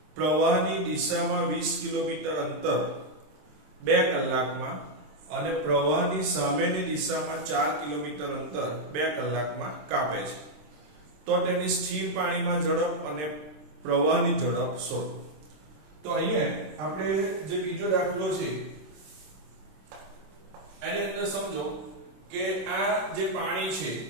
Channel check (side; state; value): left; late; 26 ms